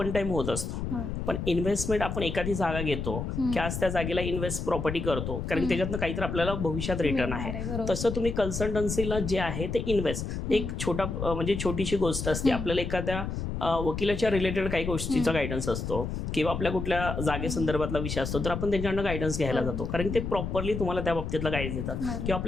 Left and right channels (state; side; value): noise; left; rumble, 4 dB below the sound